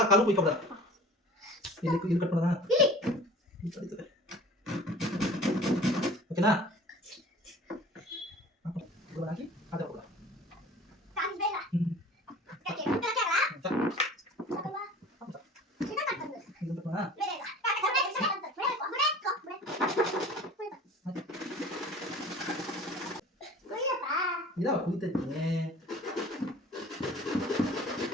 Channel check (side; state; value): both; normal; correlation 0.44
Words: ಕಾಲು ಕುಯ್ಕೊಬಿಡ ಇಲ್ಲಿ ಕಟ್ ಮಾಡೋಣ ಓಕೆನಾ ಹಾಕಿ ಅದೇ ಕೊಡ ಇದಾವ ಕುಯ್ತೈತೆ